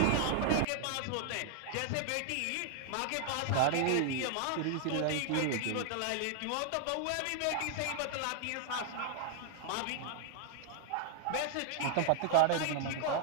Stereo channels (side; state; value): both; different; correlation 0.00